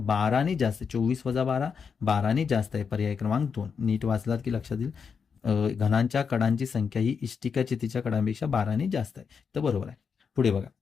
जास्त. 24 वजा 12, 12ने जास्त आहे. पर्याय क्रमांक 2. नीट वाचलात की लक्षात येईल. घनांच्या कडांची संख्या ही इष्टिकाचितीच्या कडांपेक्षा 12ने जास्त आहे. तर बरोबर आहे. पुढे बघा,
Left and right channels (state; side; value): quieter; right; 6.1 dB